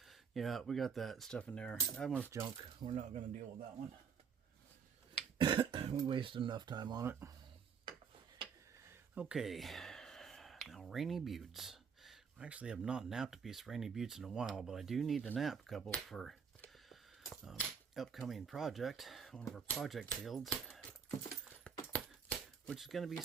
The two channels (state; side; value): quieter; left; 6.6 dB